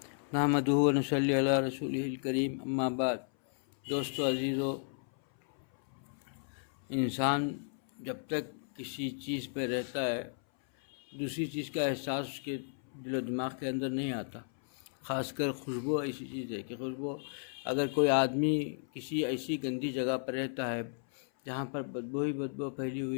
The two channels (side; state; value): right; silent; 55 dB below the other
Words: نحمدہ و نصلی علی رسولہ الکریم اما بعد۔ دوستو عزیزو، انسان جب تک کسی چیز پہ رہتا ہے دوسری چیز کا احساس اس کے دل و دماغ کے اندر نہیں آتا۔ خاص کر خوشبو ایسی چیز ہے کہ خوشبو، اگر کوئی آدمی کسی ایسی گندی جگہ پر رہتا ہے جہاں پر بدبو ہی بدبو پھیلی